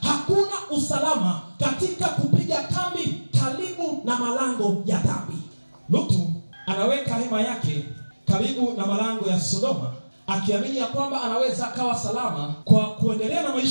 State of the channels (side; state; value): both; inverted; correlation -1.00